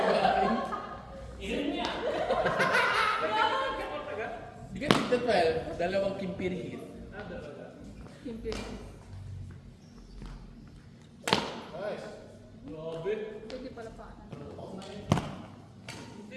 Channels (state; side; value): identical; both; correlation 1.00